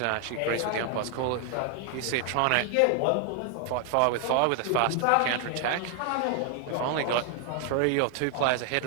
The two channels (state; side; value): different; both; correlation 0.00